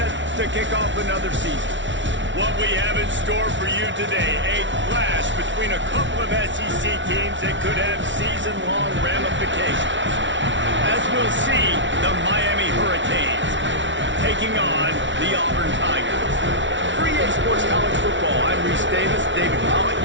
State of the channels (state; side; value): late; left; 0.55 ms